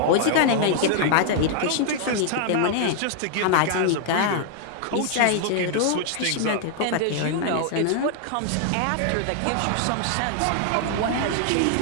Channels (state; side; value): different; both; correlation 0.00